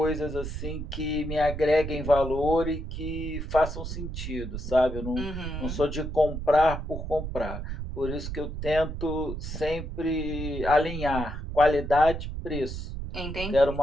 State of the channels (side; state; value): right; noise; rumble, 6 dB below the sound